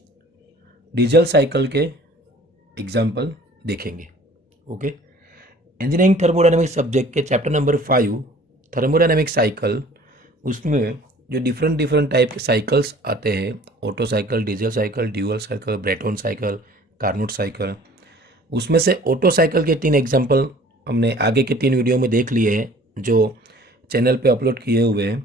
डीजल साइकिल के एग्जाम्पल देखेंगे। ओके, इंजीनियरिंग थर्मोडायनेमिक्स सब्जेक्ट के चैप्टर नंबर 5 थर्मोडायनेमिक साइकिल, उसमें जो डिफरेंट डिफरेंट टाइप के साइकिल्स आते हैं, Otto cycle, diesel cycle, dual cycle, Brayton cycle, Carnot cycle, उसमें से ऑटो साइकिल के 3 एग्जाम्पल हमने आगे के 3 वीडियो में देख लिए हैं जो चैनल पे अपलोड किए हुए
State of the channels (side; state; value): both; normal; correlation 0.50